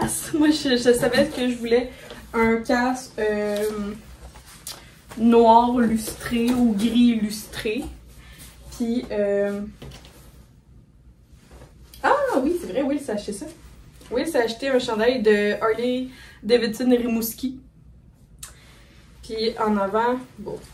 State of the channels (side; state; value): both; identical; correlation 1.00